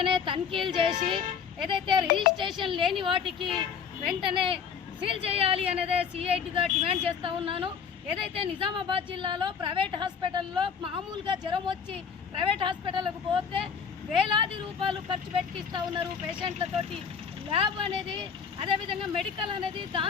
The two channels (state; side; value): quieter; right; 6.7 dB